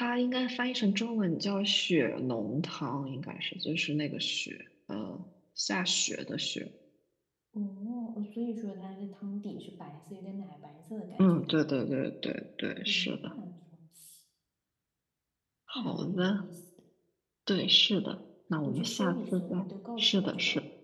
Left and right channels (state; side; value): identical; both; correlation 1.00